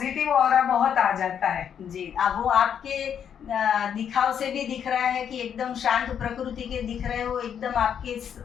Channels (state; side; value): quieter; right; 8.4 dB